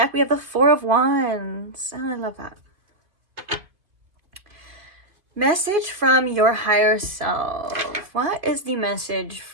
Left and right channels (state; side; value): late; left; 2.3 ms